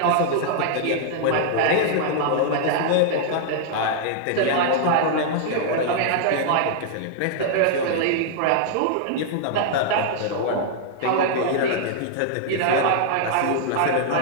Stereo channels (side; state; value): both; different; correlation -0.01